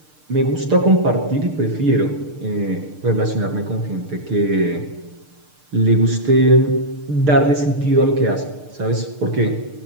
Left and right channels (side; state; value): left; late; 6.7 ms